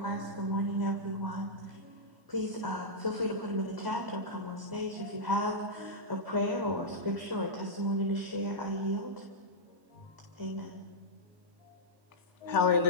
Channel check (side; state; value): left; late; 1.0 ms